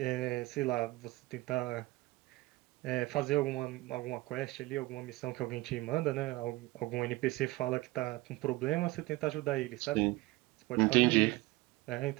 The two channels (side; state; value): left; quieter; 20.4 dB